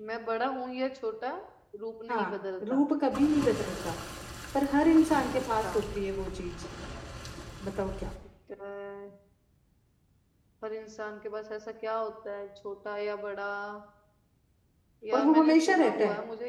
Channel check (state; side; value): identical; both; correlation 1.00